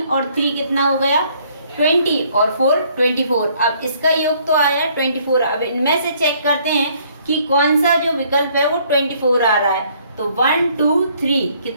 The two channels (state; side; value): inverted; both; correlation -0.64